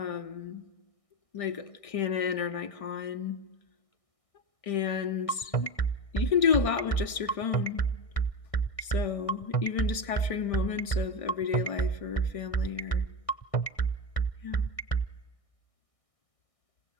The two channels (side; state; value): right; late; 1.6 ms